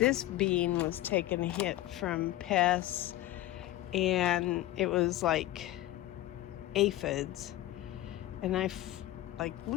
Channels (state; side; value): quieter; right; 15.4 dB